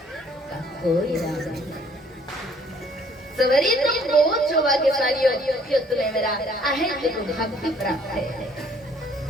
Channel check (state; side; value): normal; both; correlation 0.60